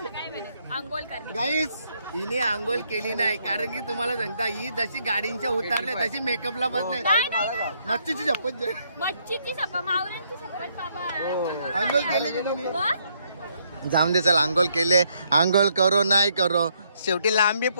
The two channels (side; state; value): both; inverted; correlation -0.72